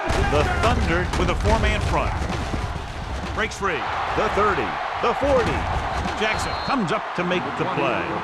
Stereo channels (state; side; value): identical; both; correlation 1.00